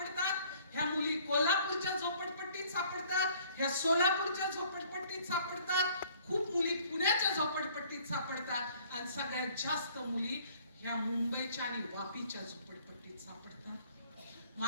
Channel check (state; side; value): inverted; both; correlation -0.57